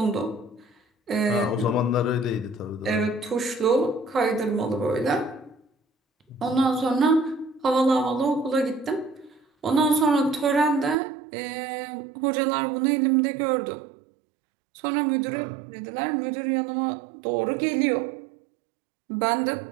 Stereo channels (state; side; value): drops out; left; at 11.0 s